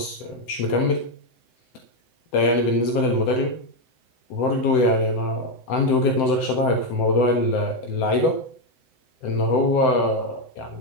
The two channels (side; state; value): right; late; 7.8 ms